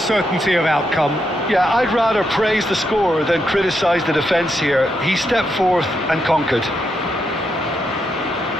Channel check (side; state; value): both; normal; correlation 0.81